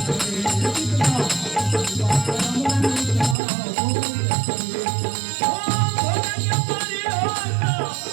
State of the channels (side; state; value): left; drops out; at 3.4 s